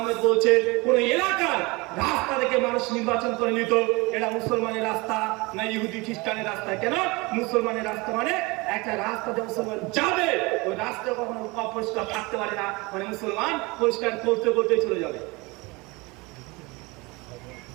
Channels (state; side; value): quieter; left; 25.0 dB